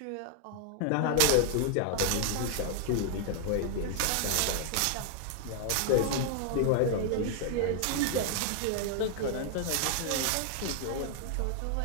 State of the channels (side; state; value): both; different; correlation 0.00